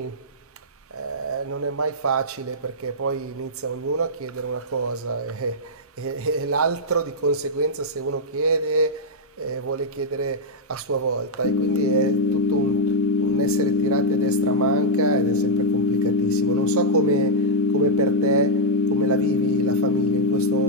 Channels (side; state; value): both; normal; correlation -0.06